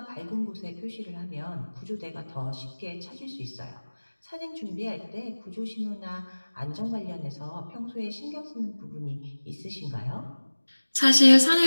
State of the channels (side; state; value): both; inverted; correlation -1.00